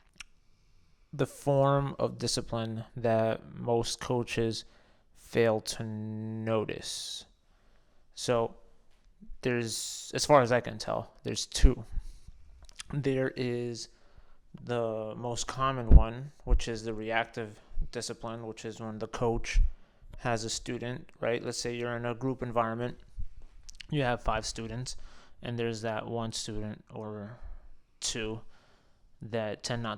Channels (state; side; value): identical; both; correlation 1.00